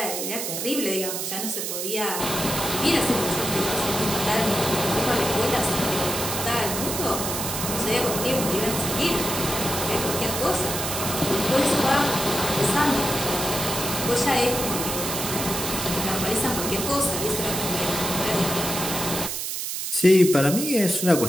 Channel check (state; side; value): noise; right; hiss, 3 dB below the sound